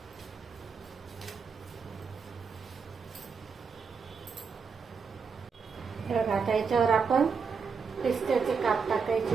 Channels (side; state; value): left; quieter; 5.6 dB